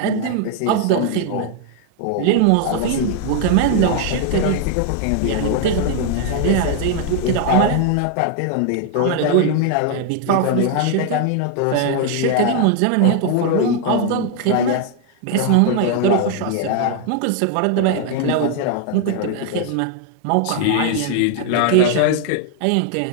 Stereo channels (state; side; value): different; both; correlation 0.00